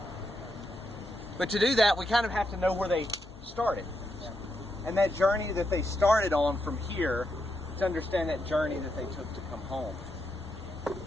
But to do that, we kind of have to know where they started. And that journey that they started on from here, to understand that journey that they took to come home.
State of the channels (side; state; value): both; normal; correlation 0.82